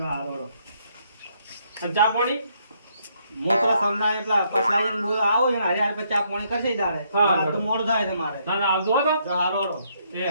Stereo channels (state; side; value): inverted; both; correlation -0.72